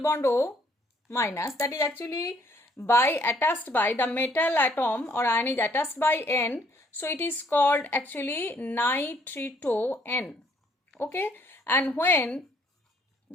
bond O minus, that is actually attached by the metal atom or ion is attached by N, so it is called actually nitrito N. Okay, and when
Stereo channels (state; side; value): normal; both; correlation 0.65